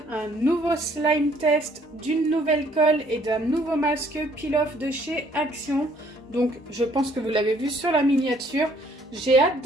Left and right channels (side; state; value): both; normal; correlation 0.62